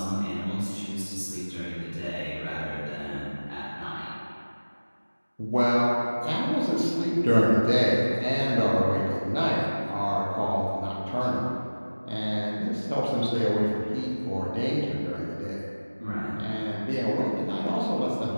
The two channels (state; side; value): inverted; both; correlation -1.00